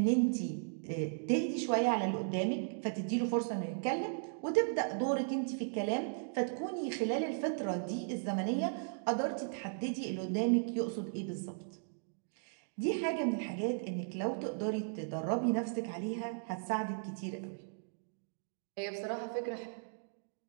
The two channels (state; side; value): silent; left; digital silence